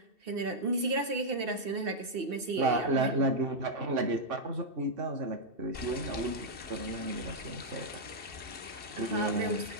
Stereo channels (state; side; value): late; left; 2.7 ms